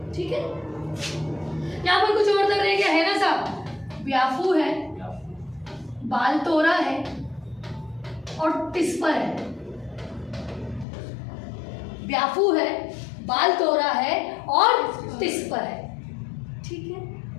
ठीक है, यहाँ पर कुछ और दर्रे क्या है ना साहब, ब्याफू है, बालतोरा है और टिस्पर है। ब्याफू है, बालतोरा है और टिस्पर है। ठीक है,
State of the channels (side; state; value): right; drops out; at 10.9 s